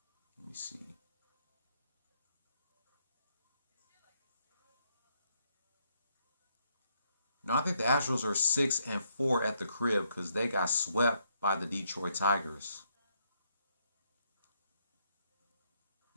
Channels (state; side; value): inverted; both; correlation -0.75